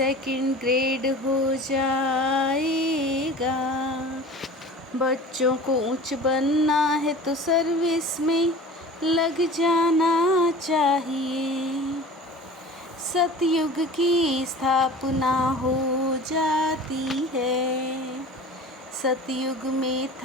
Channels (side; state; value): both; normal; correlation 0.39